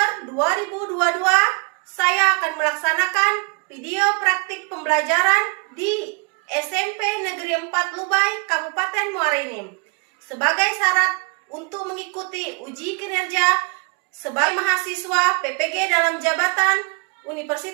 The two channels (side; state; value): left; quieter; 32.0 dB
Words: 2022, saya akan melaksanakan video praktik pembelajaran di SMP Negeri 4 Lubai, Kabupaten Muara Enim sebagai syarat untuk mengikuti uji kinerja sebagai mahasiswa PPG dalam jabatan